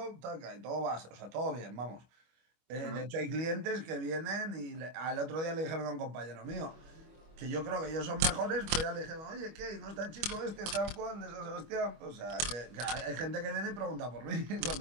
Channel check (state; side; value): late; left; 25 ms